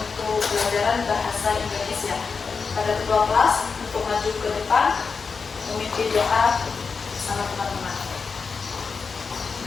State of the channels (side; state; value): right; quieter; 5.1 dB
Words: pelajaran bahasa Indonesia. Pada ketua kelas untuk maju ke depan memimpin doa bersama teman-teman.